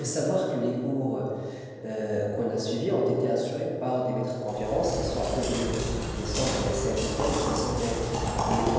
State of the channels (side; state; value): both; identical; correlation 1.00